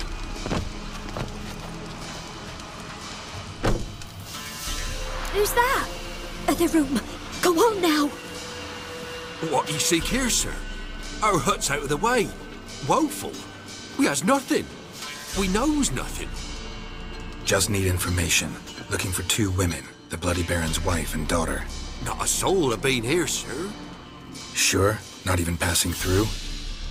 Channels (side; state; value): both; identical; correlation 1.00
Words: Who's that? Other room. Go on now. What you seek here, sir? Our hut's out of the way. Woeful. We has nothing. We knows nothing. Just need information. Looking for 2 women, the Bloody Baron's wife and daughter. Not a soul have been here, sir. Sure? Not even passing through?